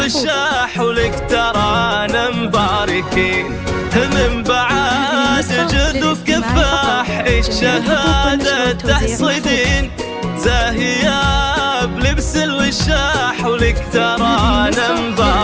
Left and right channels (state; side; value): identical; both; correlation 1.00